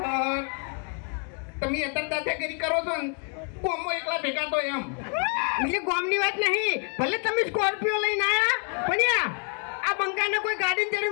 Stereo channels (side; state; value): right; quieter; 39.1 dB